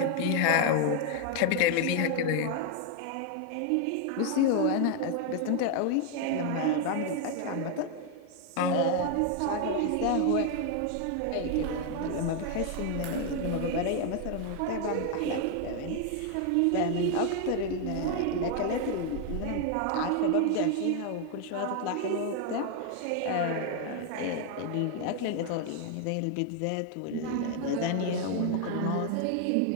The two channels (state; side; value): different; both; correlation 0.01